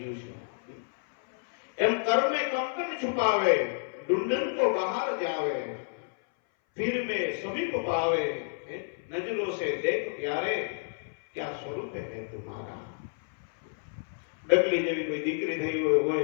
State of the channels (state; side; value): silent; right; 58 dB below the other